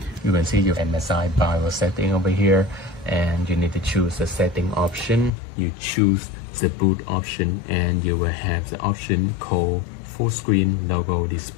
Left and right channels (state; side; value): drops out; right; at 5.3 s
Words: You can see your MSI BIOS setting over here, and you need to choose the setting option. You choose the boot option, and you will have the option called full screen logo